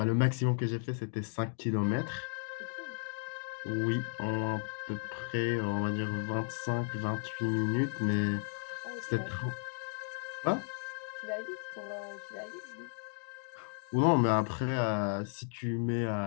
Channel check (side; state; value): right; silent; 55 dB below the other